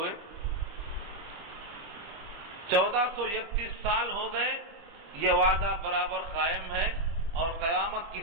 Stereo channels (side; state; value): left; late; 25 ms